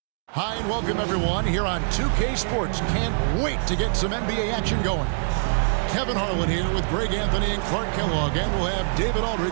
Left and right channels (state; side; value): silent; left; digital silence